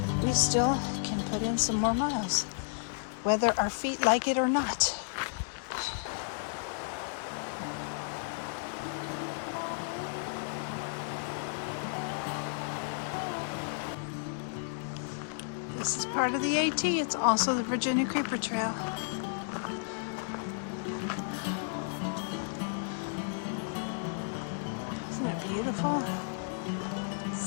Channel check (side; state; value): right; silent; digital silence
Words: we still can put in some more miles, whether our feet like it or not. This is part of the AT. It's also the Virginia Creeper Trail. Isn't it beautiful?